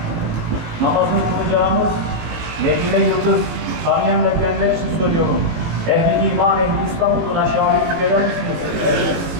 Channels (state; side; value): late; left; 18 ms